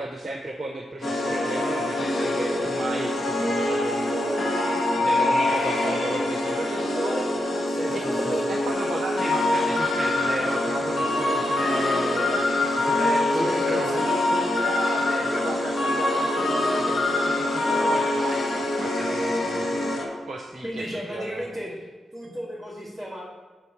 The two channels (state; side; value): normal; both; correlation 0.84